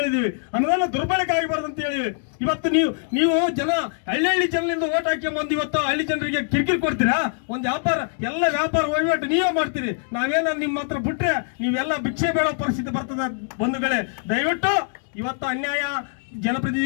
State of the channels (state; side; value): silent; right; 63 dB below the other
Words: ಅನುದಾನ ದುರ್ಬಳಕೆ ಆಗಬಾರ್ದು ಅಂತ ಹೇಳಿವಿ. ಇವತ್ತು ನೀವು ಜನ ಹಳ್ಳಿ ಜನರಿಂದ ಓಟ್ ಹಾಕಿ ಇವತ್ತು ಹಳ್ಳಿ ಜನರಿಗೆ ಕಿರಿಕಿರಿ ಕೊಡ್ತೀರಾ? ಒಂದು ಎಲ್ಲ ವ್ಯಾಪಾರ ವಹಿವಾಟು ನೀವೇ ಮಾಡ್ತೀರಿ. ನಾವೇನ ನಿಮ್ಮ ಹತ್ರ ಬಿಟ್ರೆ ನೀವೆಲ್ಲ ಭಿಕ್ಷೆ ಬೇಡೋ ಪರಿಸ್ಥಿತಿ ಬರ್ತದ ಬಂಧುಗಳೇ. ದಯವಿಟ್ಟು ಇವತ್ತು ಅನ್ಯಾಯ